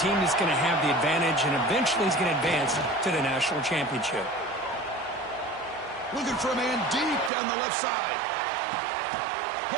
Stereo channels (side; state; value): left; drops out; at 7.3 s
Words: team that's going to have the advantage and eventually is going to advance to the national championship. Looking for a man deep down the left side.